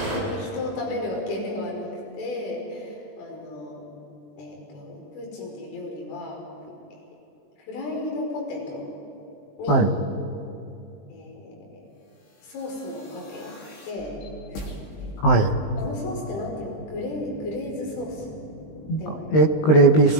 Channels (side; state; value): right; late; 20 ms